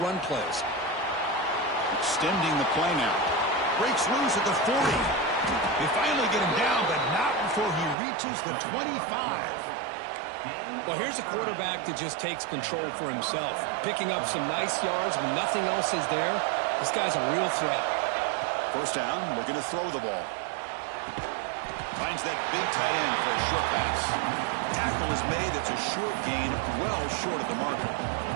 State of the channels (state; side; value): drops out; left; at 8.0 s